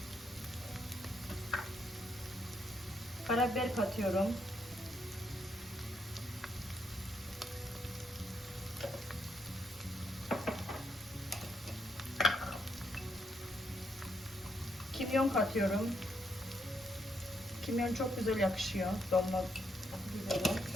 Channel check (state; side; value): normal; both; correlation 0.76